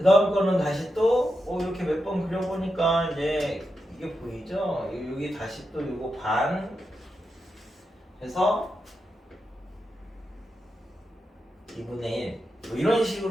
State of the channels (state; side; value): normal; both; correlation 0.87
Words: 다음 거는 다시 또 이렇게 몇 번 그려보니까 이제 이게 보이죠? 여기 다시 또 이거 반 해서 2분의 1 뭐 이런